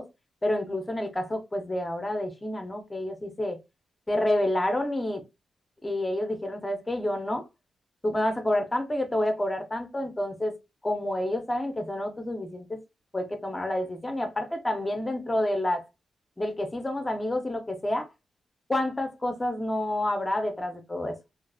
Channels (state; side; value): normal; both; correlation 0.94